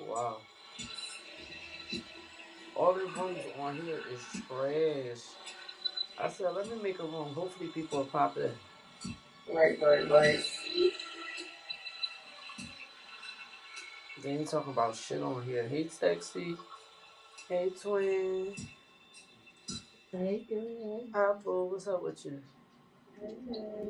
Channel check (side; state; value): both; identical; correlation 1.00